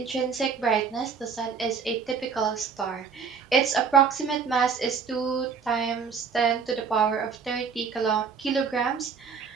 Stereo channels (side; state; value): left; quieter; 5.9 dB